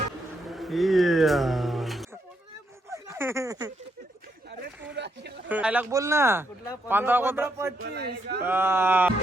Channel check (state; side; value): normal; both; correlation 0.78